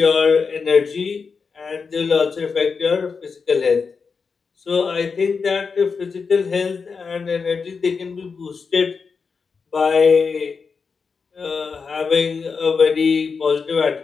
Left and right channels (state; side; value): quieter; right; 5.2 dB